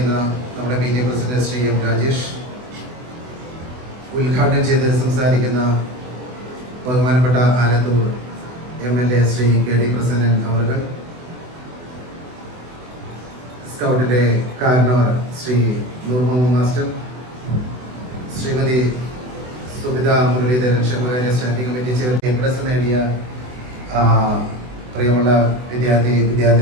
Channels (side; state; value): left; late; 24 ms